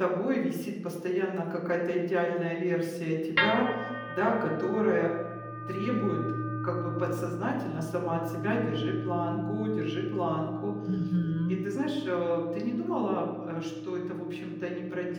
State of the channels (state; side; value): identical; both; correlation 1.00